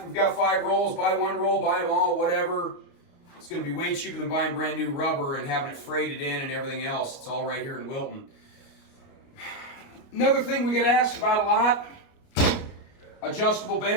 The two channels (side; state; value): right; late; 29 ms